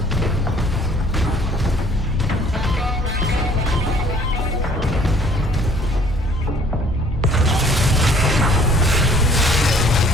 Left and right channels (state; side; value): normal; both; correlation 0.56